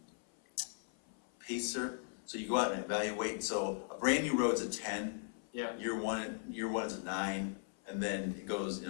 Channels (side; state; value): right; silent; 52 dB below the other